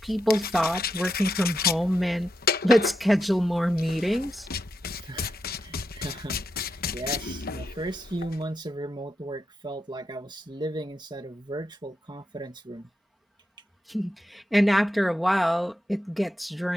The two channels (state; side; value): normal; both; correlation 0.85